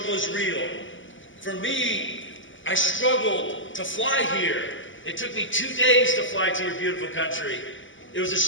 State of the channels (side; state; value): right; late; 0.56 ms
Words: is real. For me, I struggled to fly here. It took me 2 days to fly to your beautiful country. It was a